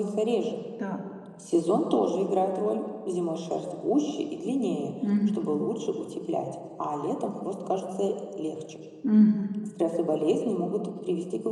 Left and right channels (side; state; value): both; identical; correlation 1.00